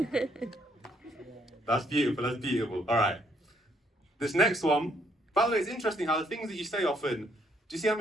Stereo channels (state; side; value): normal; both; correlation 0.69